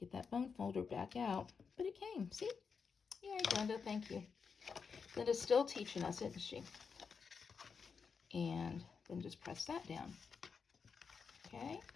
that bone folder back out. But it came, see? Yay, Glenda, thank you. Glenda's still teaching us, isn't she? And then just press that down. Okay,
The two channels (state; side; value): quieter; right; 5.7 dB